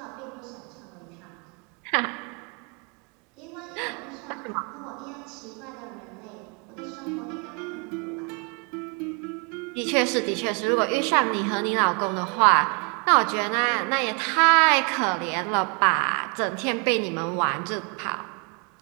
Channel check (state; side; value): quieter; left; 35.1 dB